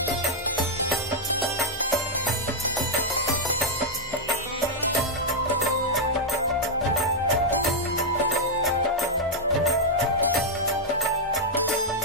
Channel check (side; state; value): both; normal; correlation -0.03